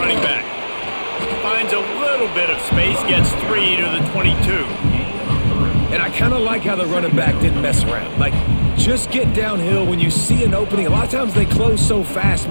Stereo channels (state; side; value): inverted; both; correlation -1.00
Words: back. Finds a little bit of space, gets 3 to the 22. And I kind of like how the running back didn't mess around. Like, just get downhill when you see an opening. A lot of times they close so fast,